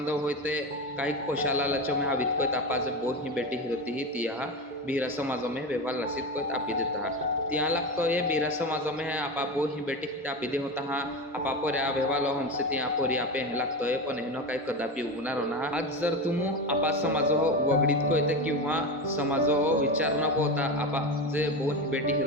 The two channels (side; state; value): both; normal; correlation 0.21